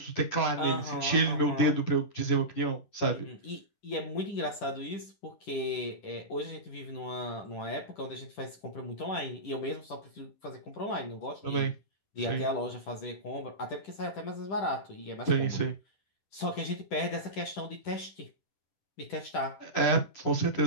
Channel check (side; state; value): right; late; 10 ms